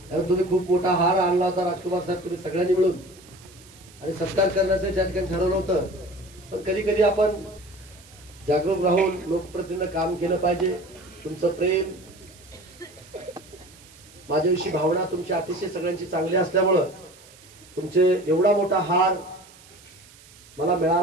तुम्ही खूप मोठा हार आणला होता राजकुमार साहेब तुम्ही सगळ्यांनी मिळून आणि सत्कार करण्याचं त्या ठिकाणी ठरवलं होतं. पण कधी कधी आपण जागरूक राहून लोकप्रतिनिधीनं काम केलं पाहिजे. तुमचं प्रेम, माझ्याविषयी भावना तुमची अतिशय सगळ्यांची चांगली असल्यामुळं तुमचे एवढा मोठा हार मला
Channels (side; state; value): right; noise; hiss, 23 dB below the sound